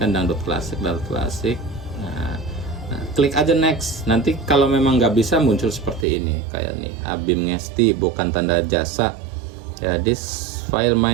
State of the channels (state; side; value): drops out; left; at 6.1 s